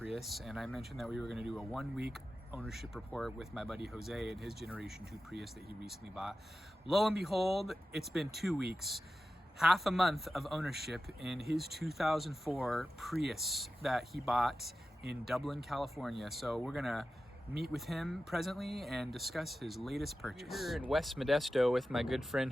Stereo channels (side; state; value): both; normal; correlation 0.93